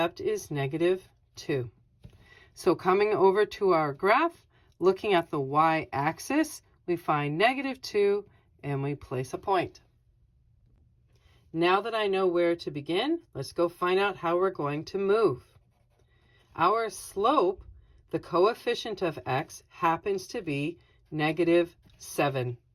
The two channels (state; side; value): identical; both; correlation 1.00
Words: is -2. So coming over to our graph, looking at the y-axis, we find -2 and we place a point. Now that I know where to begin, let's go find out how we're going to move. Our slope, the coefficient of x, happens to be -7.